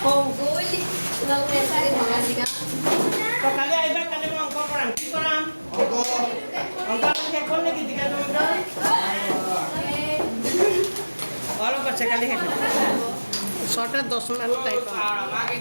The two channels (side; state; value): both; inverted; correlation -1.00